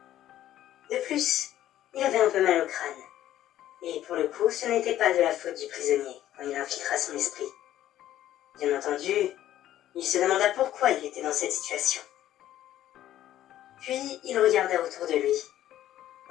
De plus, il avait un peu mal au crâne, et pour le coup, ce n'était pas de la faute du prisonnier quand il infiltra son esprit. Bien entendu, il se demanda pourquoi il était dans cette situation. Puis il regarda autour de lui.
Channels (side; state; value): right; quieter; 12.7 dB